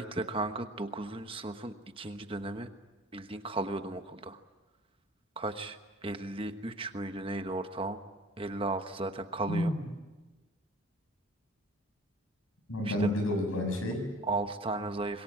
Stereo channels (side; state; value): both; normal; correlation 0.46